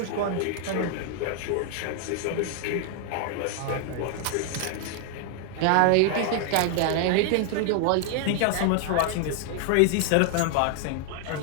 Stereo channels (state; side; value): different; both; correlation 0.00